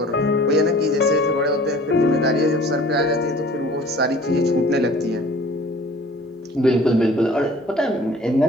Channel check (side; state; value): both; normal; correlation 0.48